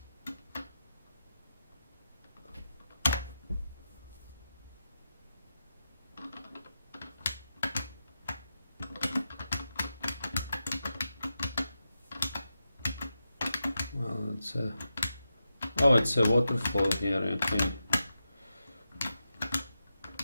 It's a... Oh, it's a waterfall here, okay.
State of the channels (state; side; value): inverted; both; correlation -0.88